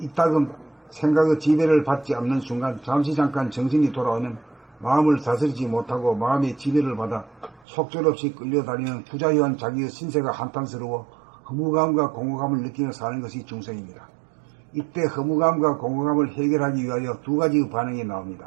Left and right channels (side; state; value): left; drops out; at 7.7 s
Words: 생각의 지배를 받지 않는 순간 잠깐 정신이 돌아오면 마음을 다스리지 못하고 마음의 지배를 받아 속절없이 끌려다니는 부자유한 자기의 신세가 한탄스러워 허무감과 공허감을 느끼며 사는 것이 중생입니다. 이때 허무감과 공허감을 해결하기 위하여 2가지의 반응이